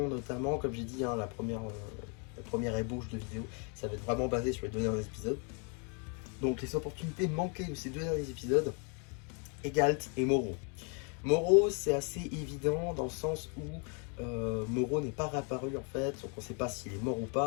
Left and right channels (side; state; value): right; quieter; 37.0 dB